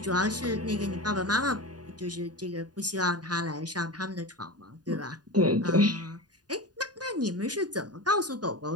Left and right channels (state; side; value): late; left; 0.69 ms